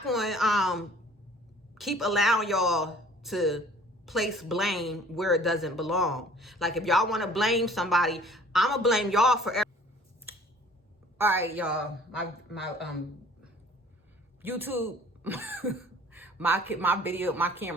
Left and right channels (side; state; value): both; normal; correlation 0.52